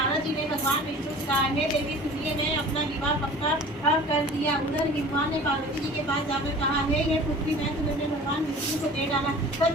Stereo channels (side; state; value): both; normal; correlation 0.43